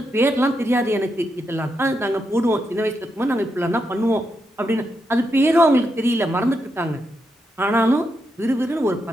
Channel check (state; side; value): normal; both; correlation 0.83